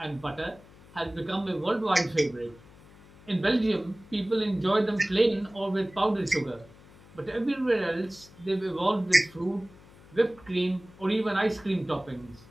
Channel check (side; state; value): left; noise; hum, 23 dB below the sound